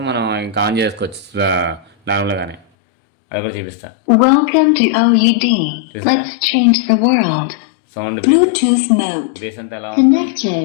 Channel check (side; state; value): right; drops out; at 2.6 s